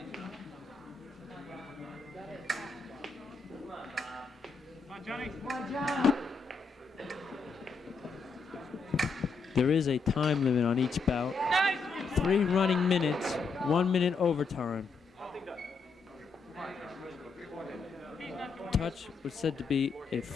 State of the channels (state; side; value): quieter; right; 4.5 dB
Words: Come on, Johnny. Come on, John. There is a time limit on each bout. Nice. 3 running minutes, 1 minute overtime. Touch was said to be a